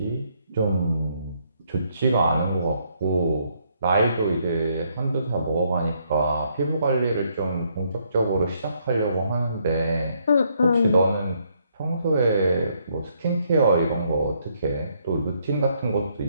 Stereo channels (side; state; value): both; inverted; correlation -0.71